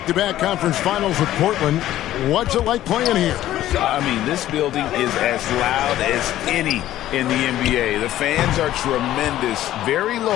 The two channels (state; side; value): quieter; right; 13.6 dB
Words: conference finals with Portland. What's it like playing here? I mean, this building is as loud as any in the NBA. The fans are tremendous, very